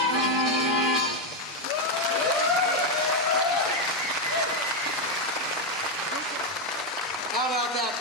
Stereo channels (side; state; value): both; normal; correlation 0.05